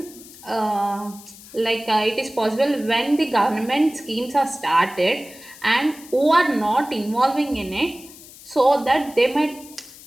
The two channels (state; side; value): noise; left; hiss, 19 dB below the sound